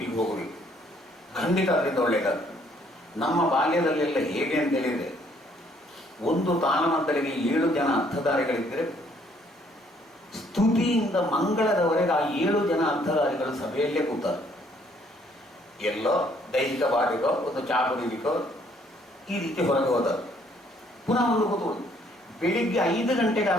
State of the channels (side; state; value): both; normal; correlation 0.65